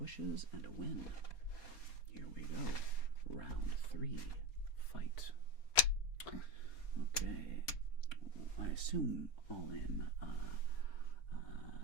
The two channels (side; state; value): right; late; 4.3 ms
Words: and a win. Here we go. Round 3. Fight. Okay. I assume all in.